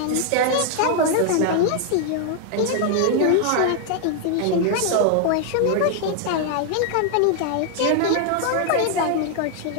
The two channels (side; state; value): both; different; correlation 0.00